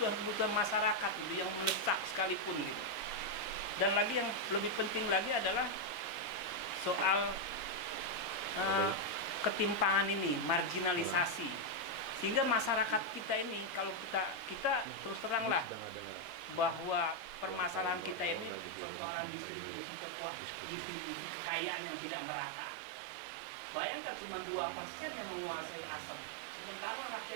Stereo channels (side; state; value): left; drops out; at 18.8 s